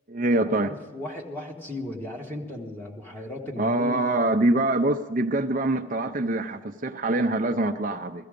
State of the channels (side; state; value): both; normal; correlation 0.38